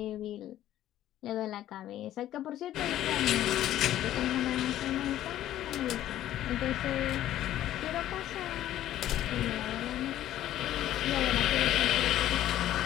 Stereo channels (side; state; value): right; quieter; 12.9 dB